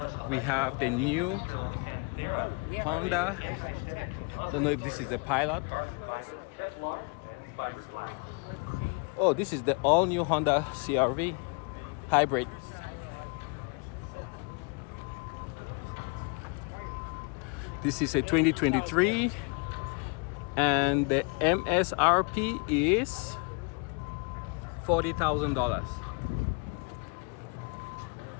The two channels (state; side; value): quieter; right; 32.6 dB